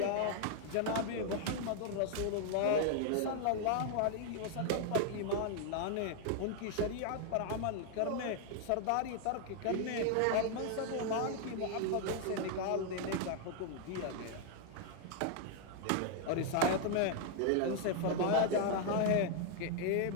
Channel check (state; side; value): different; both; correlation 0.00